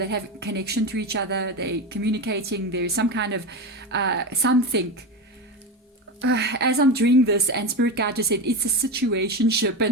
have connection to each other. They're communicating. There's some kind of something. As I'm doing this, and Spirit Guide just said it's a situationship,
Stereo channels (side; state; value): both; normal; correlation 0.20